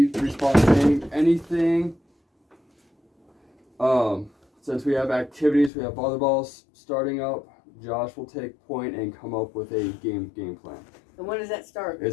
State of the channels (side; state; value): right; drops out; at 5.7 s